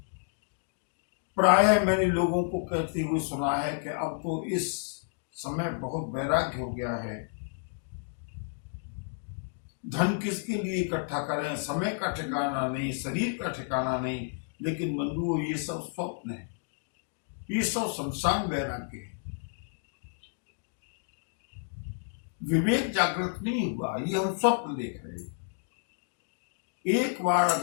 प्रायः मैंने लोगों को कहते हुए सुना है कि अब तो इस समय बहुत वैराग्य हो गया है। धन किसके लिए इकट्ठा करें, समय का ठिकाना नहीं, शरीर का ठिकाना नहीं। लेकिन बंधुओं ये सब स्वप्न है, ये सब संसार वैराग्य है। विवेक जागृत नहीं हुआ, ये हम स्वप्न देख रहे हैं। एक बार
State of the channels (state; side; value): silent; right; digital silence